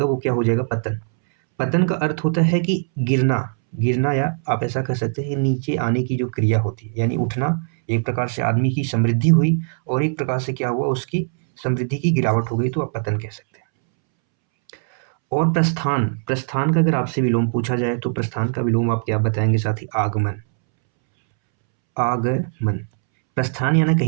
वो क्या हो जाएगा, पतन। पतन का अर्थ होता है कि गिरना, गिरना, या आप ऐसा कह सकते हैं नीचे आने की जो क्रिया होती है, यानी उठना। एक प्रकार से आदमी की समृद्धि हुई और एक प्रकार से क्या हुआ, उसकी समृद्धि की गिरावट हो गई, तो आप पतन कह सकते हैं। और प्रस्थान, प्रस्थान का अगर आपसे विलोम पूछा जाए तो प्रस्थान का विलोम आप क्या बताएंगे साथी? आगमन। आगमन, प्रस्थान यानी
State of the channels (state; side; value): silent; left; 65 dB below the other